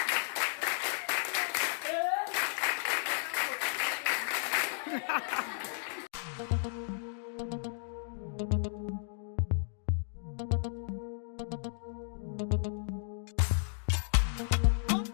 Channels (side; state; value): right; silent; digital silence